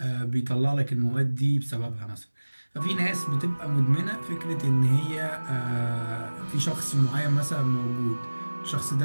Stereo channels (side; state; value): both; inverted; correlation -1.00